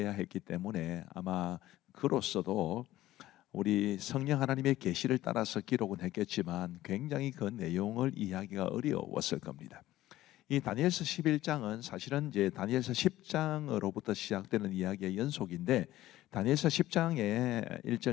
했기 때문에 아마 그로서도 우리 성령 하나님의 계시를 따라서 기록은 했겠지만 굉장히 그 내용을 이해하기가 어려웠을 겁니다. 이 다니엘서 11장은 사실은 이제 다니엘서 10장으로부터 시작되는 이야기의 연속인데 다니엘서 10장의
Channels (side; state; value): right; quieter; 15.3 dB